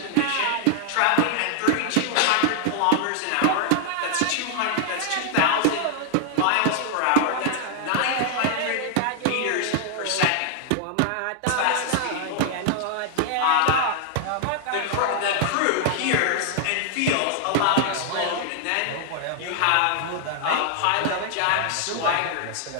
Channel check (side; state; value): both; different; correlation 0.00